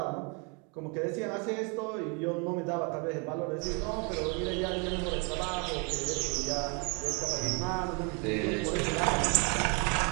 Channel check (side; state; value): left; quieter; 33.9 dB